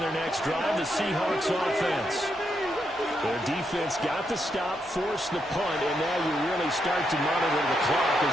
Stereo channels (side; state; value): both; normal; correlation 0.80